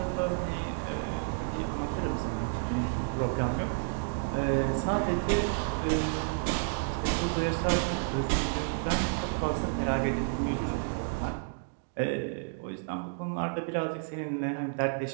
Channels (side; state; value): left; silent; digital silence